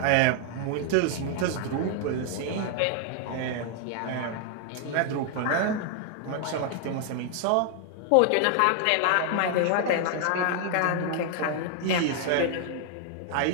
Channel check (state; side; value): different; both; correlation 0.00